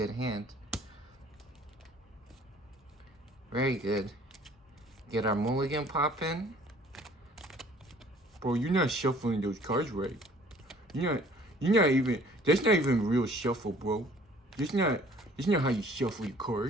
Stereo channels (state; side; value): normal; both; correlation 0.54